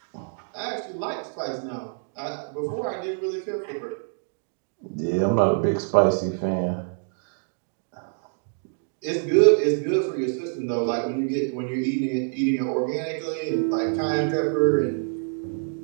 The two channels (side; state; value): left; silent; 61 dB below the other